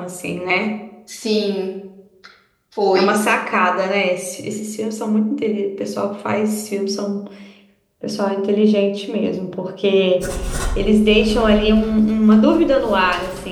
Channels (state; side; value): identical; both; correlation 1.00